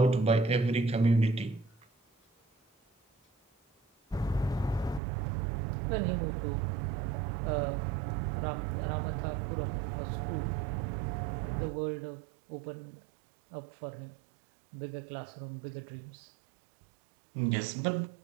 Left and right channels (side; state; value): left; drops out; at 5.0 s